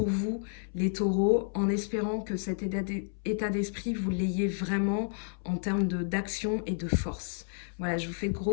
vous, les taureaux, en espérant que cet état d'esprit, vous l'ayez vraiment en termes d'action et de force. Voilà, je vous fais de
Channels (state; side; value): silent; right; 57 dB below the other